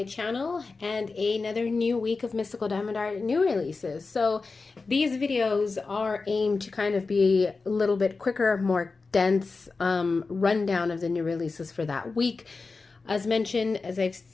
channel and another new week of Mystical Diamond Art new releases. So these videos are aimed to kind of be a little bit quicker, more dense rundown of the new releases for that week. As mentioned, as I've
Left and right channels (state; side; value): quieter; right; 4.1 dB